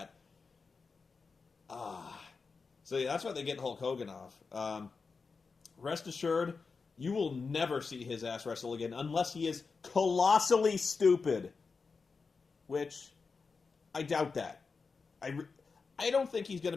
So yeah, that's why they get Hulk Hogan off. Rest assured, you will never see his ass wrestle again unless he is colossally stupid. Which, I doubt that. I don't think he's going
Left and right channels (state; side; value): quieter; right; 4.7 dB